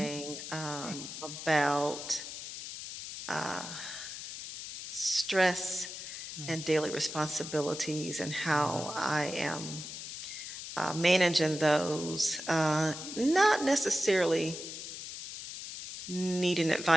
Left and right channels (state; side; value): noise; left; hiss, 9 dB below the sound